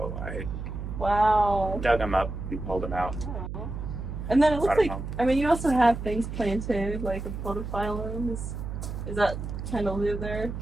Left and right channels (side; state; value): right; noise; hum, 6 dB below the sound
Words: I Wow. dug them up and pulled them out. Aw. And then it looks Brought 'em like, home. I mean, you also have things planted, like a podophyllum. Is that kind of live there?